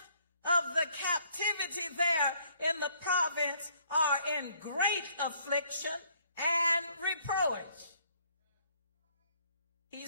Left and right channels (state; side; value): inverted; both; correlation -0.65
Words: of the captivity there in the province are in great affliction and reproach. He